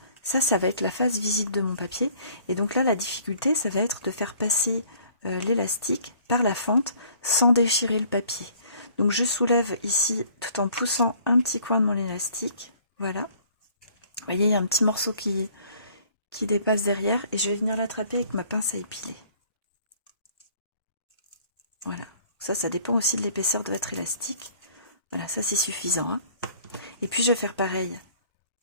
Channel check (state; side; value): inverted; both; correlation -0.56